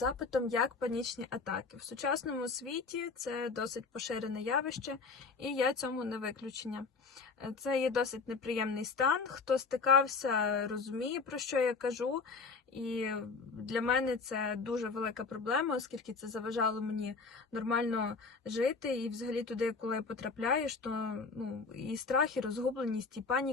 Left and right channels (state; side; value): quieter; right; 4.6 dB